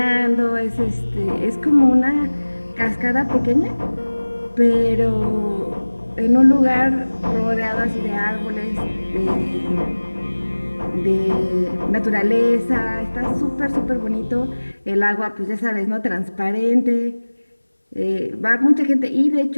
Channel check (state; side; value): inverted; both; correlation -1.00